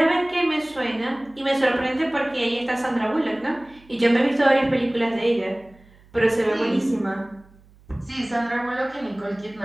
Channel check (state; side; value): noise; right; hum, 27 dB below the sound